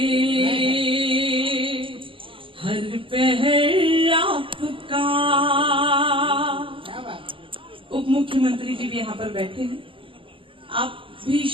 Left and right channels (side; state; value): left; late; 0.25 ms